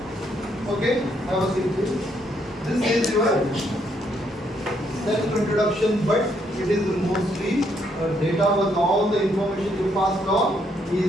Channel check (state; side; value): normal; both; correlation 0.73